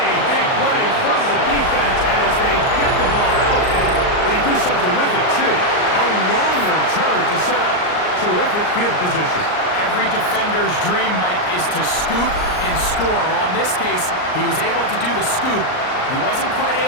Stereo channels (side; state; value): right; late; 38 ms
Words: big play from the defense as they get the ball out, and they do something with it, too. A long return to set up terrific field position. Every defender's dream, Mike, is to scoop and score. Well, in this case, he was able to do the scoop. He wasn't quite